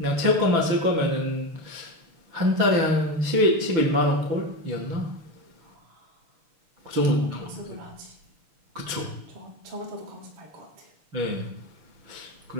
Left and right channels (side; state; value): left; late; 6.0 ms